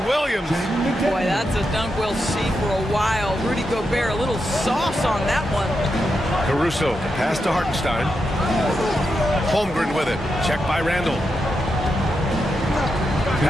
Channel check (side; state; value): both; normal; correlation 0.86